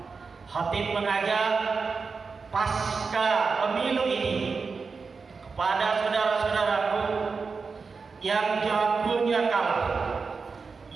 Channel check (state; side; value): quieter; left; 4.8 dB